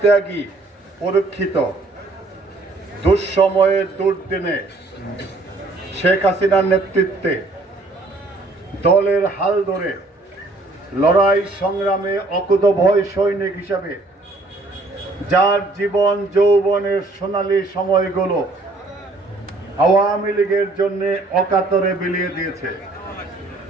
ত্যাগী, পরীক্ষিত, দুঃসময়ে দুর্দিনে শেখ হাসিনার নেতৃত্বে দলের হাল ধরে লড়াই সংগ্রামে অকুতভয় সৈনিক হিসাবে যার জীবন যৌবনের সোনালী সময়গুলো আওয়ামী লীগের জন্য অকাতরে বিলিয়ে দিয়েছে,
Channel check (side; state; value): left; quieter; 3.1 dB